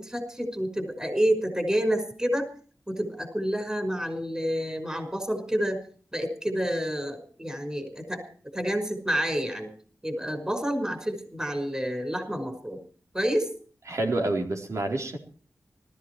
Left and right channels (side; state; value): both; normal; correlation 0.93